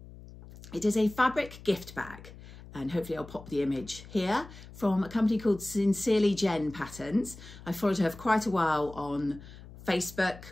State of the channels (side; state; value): left; noise; hum, 17 dB below the sound